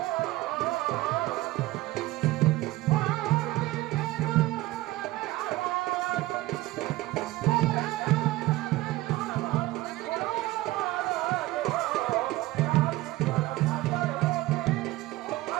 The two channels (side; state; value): left; quieter; 18.1 dB